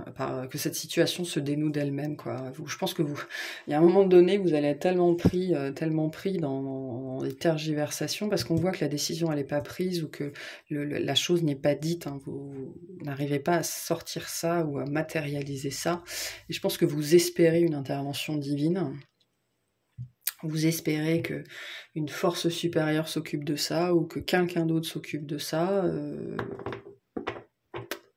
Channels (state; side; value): identical; both; correlation 1.00